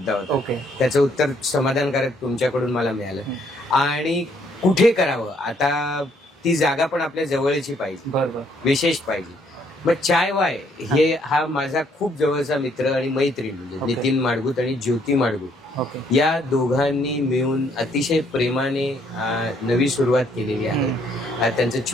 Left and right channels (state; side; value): normal; both; correlation 0.68